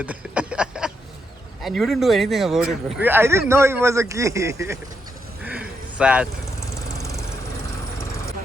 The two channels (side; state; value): both; normal; correlation 0.80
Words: And you didn't do anything about it, bro. I didn't know it was a key. Sad.